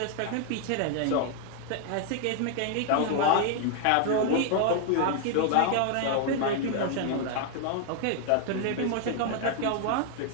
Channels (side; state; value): both; different; correlation 0.00